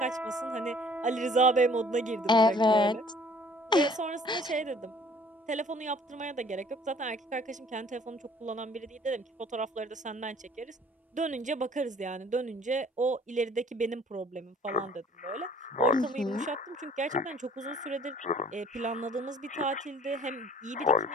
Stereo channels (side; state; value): both; normal; correlation 0.55